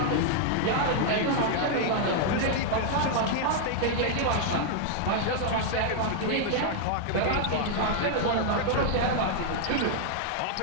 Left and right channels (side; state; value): both; different; correlation 0.00